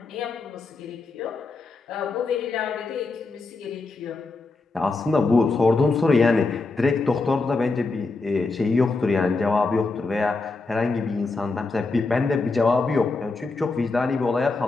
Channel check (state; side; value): quieter; right; 3.7 dB